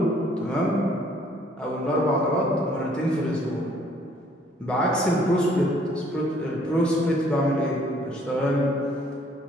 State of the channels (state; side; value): normal; both; correlation 0.61